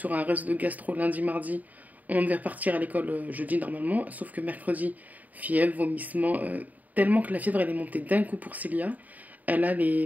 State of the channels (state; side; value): late; left; 0.077 ms